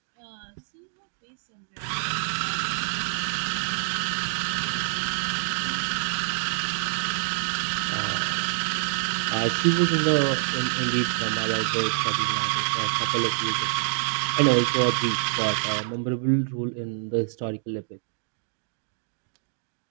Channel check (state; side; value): silent; left; digital silence